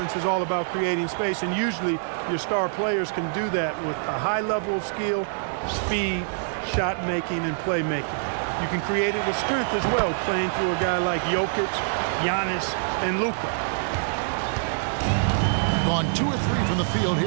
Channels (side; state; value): left; silent; digital silence